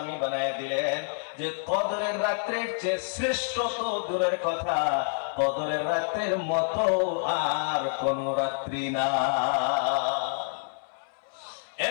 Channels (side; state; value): right; silent; 59 dB below the other